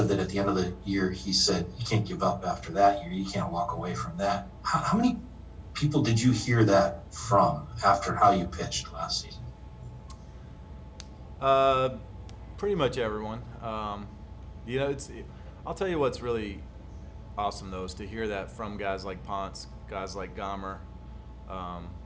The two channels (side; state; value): both; identical; correlation 1.00